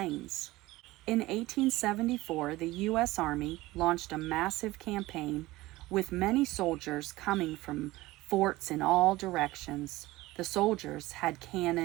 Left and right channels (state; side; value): quieter; left; 18.7 dB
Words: In 1874, the U.S. Army launched a massive campaign with many soldiers coming from forts in all directions. The soldiers had